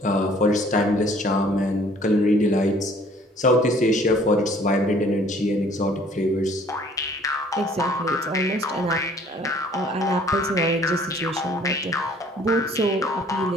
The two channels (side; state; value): both; normal; correlation 0.57